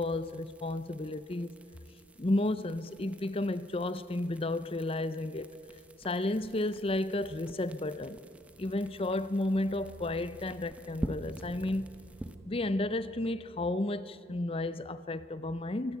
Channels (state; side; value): normal; both; correlation 0.70